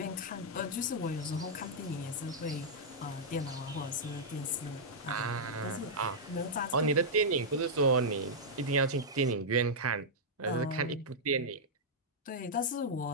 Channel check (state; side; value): normal; both; correlation -0.07